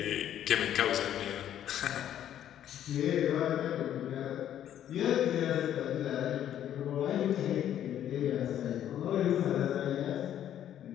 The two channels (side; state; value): right; quieter; 10.8 dB